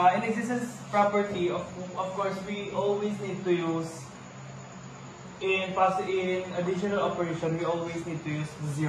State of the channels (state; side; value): identical; both; correlation 1.00